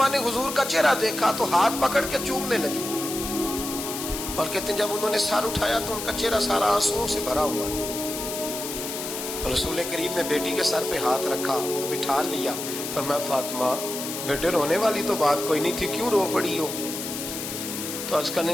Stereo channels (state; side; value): noise; left; hiss, 6 dB below the sound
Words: نے حضور کا چہرہ دیکھا تو ہاتھ پکڑ کے چومنے لگی، اور کہتے ہیں جب انہوں نے سر اٹھایا تو ان کا چہرہ سارا آنسوؤں سے بھرا ہوا تھا۔ رسول کریم نے بیٹی کے سر پہ ہاتھ رکھا، بٹھا لیا، فرمایا فاطمہ بیٹے رونے والی تو بات کوئی نہیں تھی، کیوں رو پڑی ہو؟ تو عرض کرنے